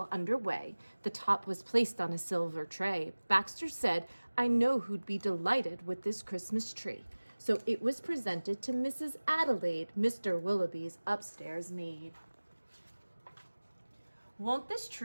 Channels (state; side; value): inverted; both; correlation -1.00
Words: underway, the top was placed on a silver tray. Baxter said, "I know who'd be delighted with this Christmas tree." So it was presented to Mrs. Adelaide, Mr. Willowby's upstairs maid. "Won't this